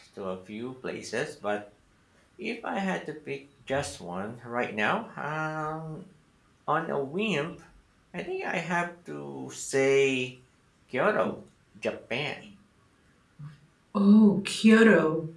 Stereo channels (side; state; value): both; identical; correlation 1.00